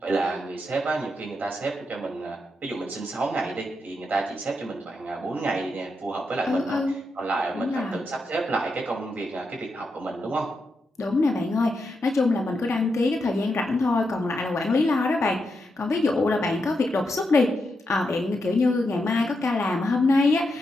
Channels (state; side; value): normal; both; correlation 0.84